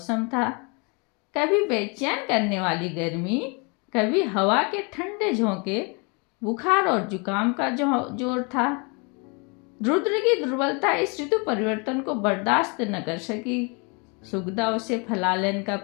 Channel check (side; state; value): right; quieter; 32.1 dB